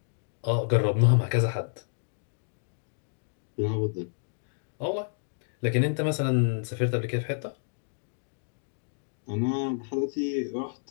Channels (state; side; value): silent; right; digital silence